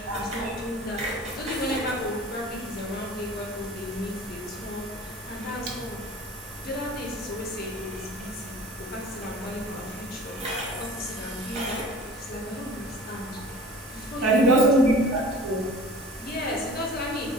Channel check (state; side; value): normal; both; correlation 0.43